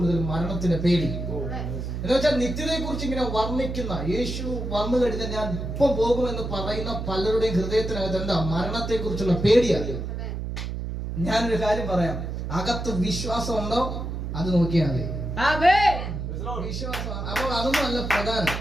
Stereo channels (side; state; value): right; noise; hum, 5 dB below the sound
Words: മരണത്തിന്റെ പേടി. എന്ന് വെച്ചാൽ നിത്യതയെ കുറിച്ച് ഇങ്ങനെ വർണ്ണിക്കുന്ന, യേശു വന്നു കഴിഞ്ഞാൽ ഞാൻ ഇപ്പം പോകുമെന്ന് പറയുന്ന പലരുടെയും ഹൃദയത്തിനകത്ത് എന്താ? മരണത്തെ കുറിച്ചുള്ള പേടിയാണ്. ഞാനൊരു കാര്യം പറയാം, അകത്ത് വിശ്വാസം ഉണ്ടോ അത് നോക്കിയാൽ മതി. വിശ്വാസം. അപ്പോൾ അതൊന്നും അല്ല പ്രധാനം.